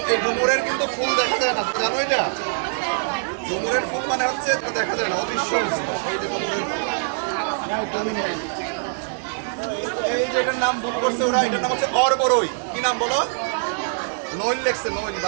এই ডুমুরের কিন্তু ফুল দেখা যায় না, জানো এটা? ডুমুরের ফুল মানে হচ্ছে দেখা যায় না, অদৃশ্য। এই যে এটার নাম ভুল করছে ওরা, এটার নাম হচ্ছে অরবরই। কি নাম বলো? নইল লেখছে, নইল।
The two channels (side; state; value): left; silent; digital silence